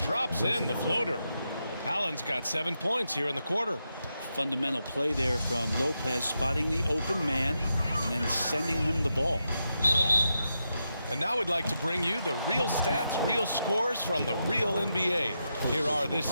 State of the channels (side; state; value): both; inverted; correlation -0.86